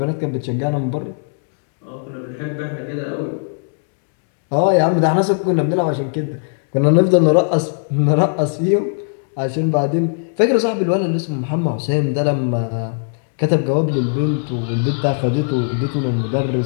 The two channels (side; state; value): right; silent; digital silence